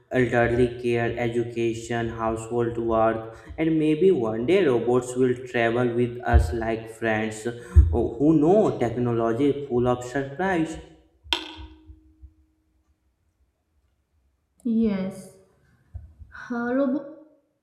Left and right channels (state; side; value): identical; both; correlation 1.00